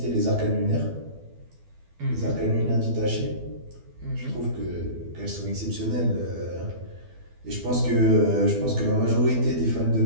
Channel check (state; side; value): late; left; 12 ms